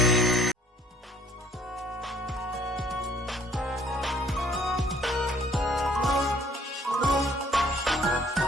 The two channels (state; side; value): normal; both; correlation 0.60